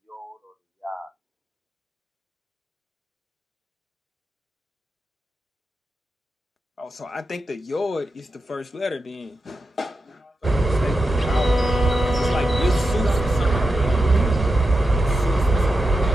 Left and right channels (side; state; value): both; normal; correlation 0.89